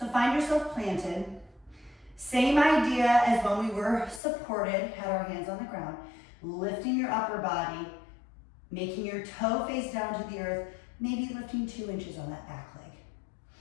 find yourself planted. Same idea as when we were supported, had our hands on the ground, lifting your upper body, making your toe face down to the earth, maybe lifting 2 inches on that back leg.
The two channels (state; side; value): drops out; right; at 4.2 s